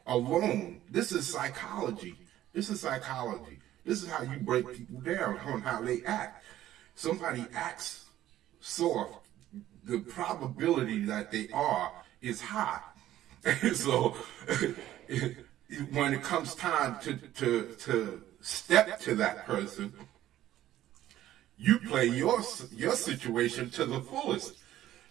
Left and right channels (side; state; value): left; quieter; 13.3 dB